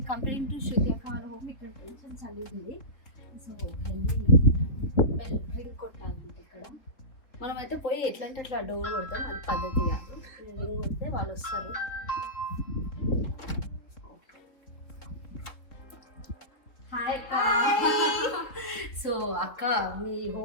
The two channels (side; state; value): right; late; 3.5 ms